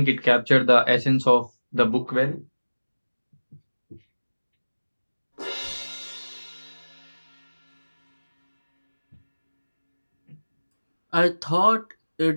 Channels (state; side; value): inverted; both; correlation -1.00